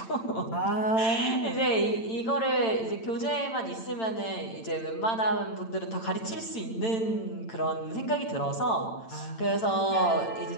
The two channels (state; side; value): late; right; 8.9 ms